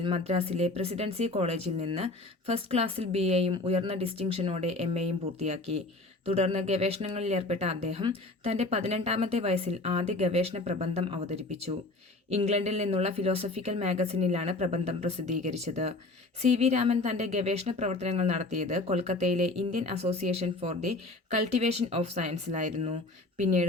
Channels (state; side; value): quieter; right; 3.0 dB